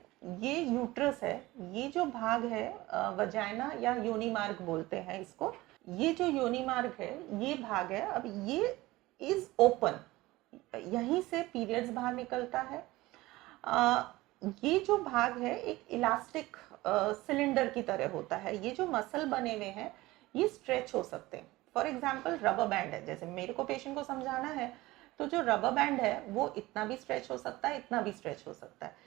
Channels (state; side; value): quieter; left; 19.1 dB